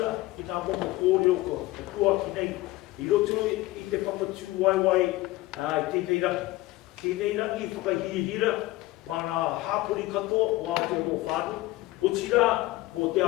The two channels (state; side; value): quieter; right; 18.6 dB